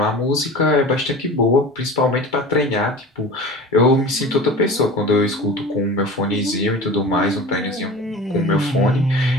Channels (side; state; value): both; normal; correlation 0.35